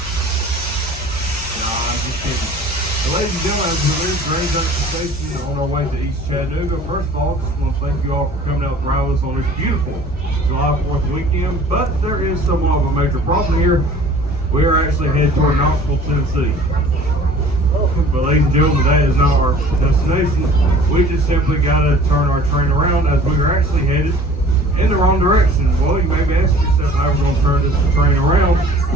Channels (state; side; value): normal; both; correlation 0.48